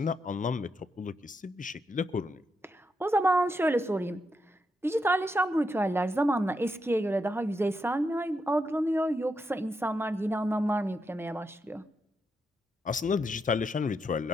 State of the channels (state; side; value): normal; both; correlation 0.83